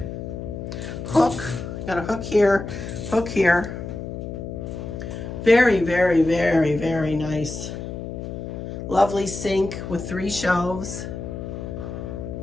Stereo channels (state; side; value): noise; left; hum, 7 dB below the sound